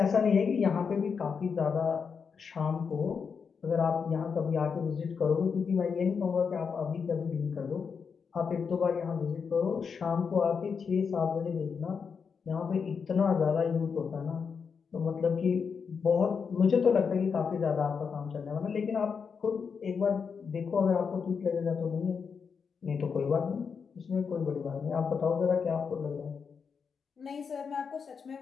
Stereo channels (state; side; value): quieter; right; 6.0 dB